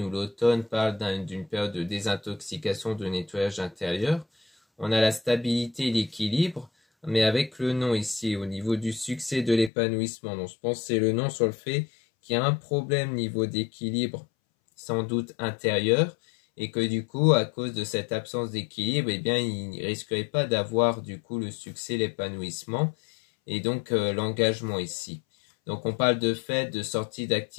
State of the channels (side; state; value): right; drops out; at 9.7 s